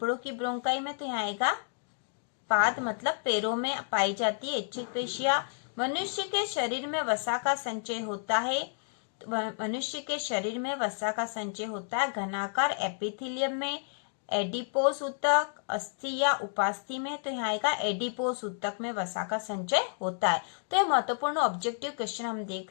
की ब्रोंकाई में। तो यहाँ आएगा पाद मतलब पैरों में पाई जाती है ऐच्छिक पेशियां। मनुष्य के शरीर में वसा का संचय होता है। मनुष्य के शरीर में वसा का संचय होता है घनाकार एपिथेलियम में, एडिपोस ऊतक, अस्थि या उपास्थि में। तो यहाँ आएगा एडिपोस ऊतक में वसा का संचय होता है। तो ये महत्वपूर्ण ऑब्जेक्टिव क्वेश्चन हम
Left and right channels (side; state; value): right; silent; 57 dB below the other